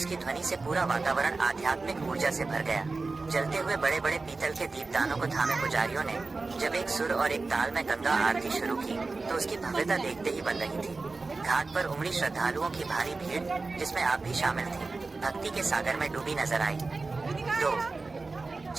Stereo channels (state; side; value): quieter; left; 3.7 dB